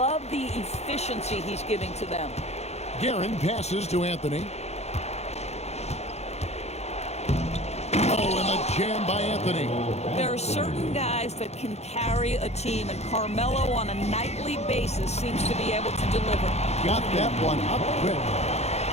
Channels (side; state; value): right; late; 0.31 ms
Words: the efficiency he's giving to them. Guerin passes to Anthony. Oh, and a jam by Anthony. There are certain guys that can carry a team, and Carmelo on a nightly basis seems to be able to deliver. Got that one up quick.